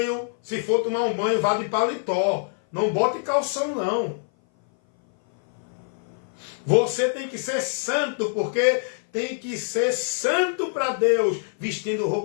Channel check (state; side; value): silent; right; 58 dB below the other